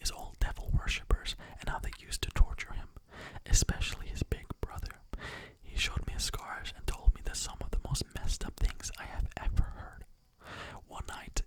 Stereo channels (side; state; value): both; identical; correlation 1.00